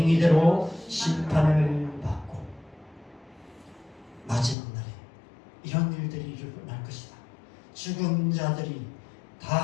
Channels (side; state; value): right; drops out; at 4.5 s